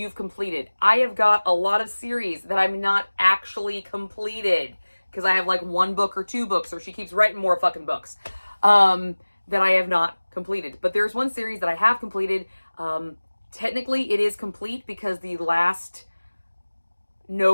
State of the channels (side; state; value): both; inverted; correlation -1.00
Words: completed? I have got a lot of series that I'm not actually completed because I have like 1 book or 2 books, or she keeps writing more fucking books that I have not completed. But there's one series that I have completed. Technically it is complete because the last